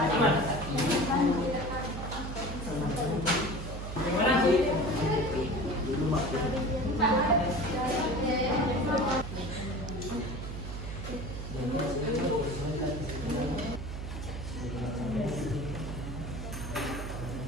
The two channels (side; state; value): right; noise; hum, 7 dB below the sound